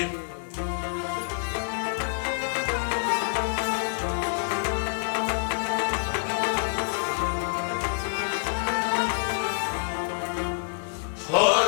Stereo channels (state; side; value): silent; right; 60 dB below the other